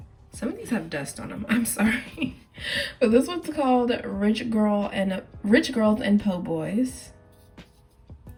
some of these have dust on them, I'm sorry. But this one's called Rich Girls and Po' Boys.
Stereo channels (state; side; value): identical; both; correlation 1.00